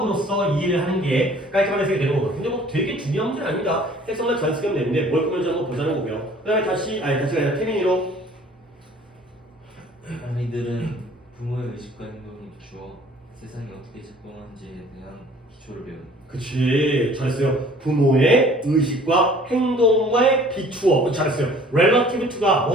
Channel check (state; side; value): normal; both; correlation 0.52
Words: 이해를 하는 게 깔끔한 해석이 되는 거거든요. 근데 뭐 되게 중요한 문제는 아닙니다. 해석만 잘 쓰면 되는데 뭘 꾸며주는 거 보자는 거고요. 그 다음에 다시가 아니라 태민이로 아이들은 부모의 의식과 행동을 비추어 세상이 어떻게 작동하는지에 대한 기초를 배웁니다. 그치, 잘했어요. 부모의 의식과 행동에 비추어. 잘했어요. relative to가